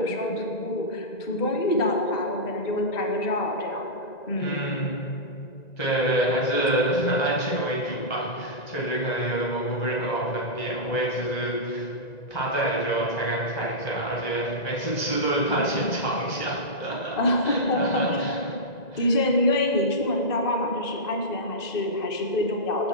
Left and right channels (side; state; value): right; late; 1.9 ms